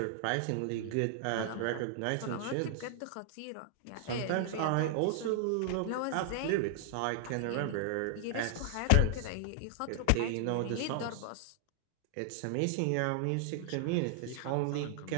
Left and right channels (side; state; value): both; different; correlation -0.01